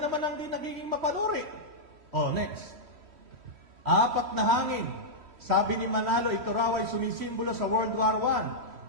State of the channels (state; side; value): late; left; 3.1 ms